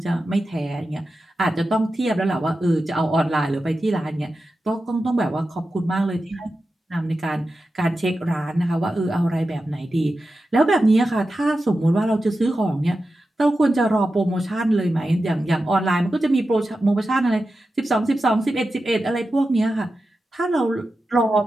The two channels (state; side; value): normal; both; correlation 0.92